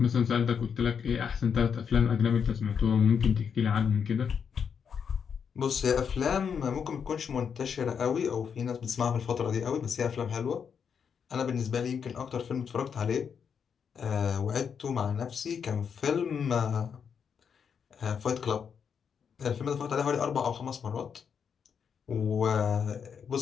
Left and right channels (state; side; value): quieter; right; 6.9 dB